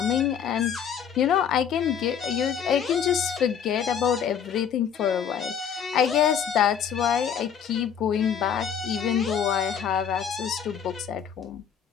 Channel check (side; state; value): right; quieter; 8.0 dB